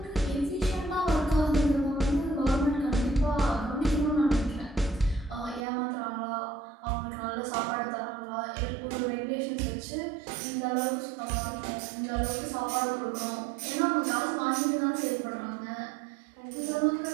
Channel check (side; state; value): left; drops out; at 5.7 s